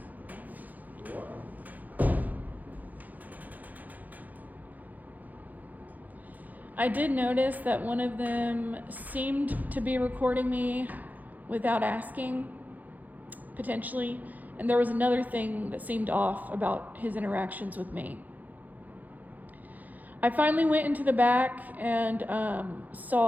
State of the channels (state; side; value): late; left; 0.082 ms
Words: I did notice that one of them seemed to be recording me without asking, potentially. And there was another thing that seemed off about his interactions with me. I finally went into the back and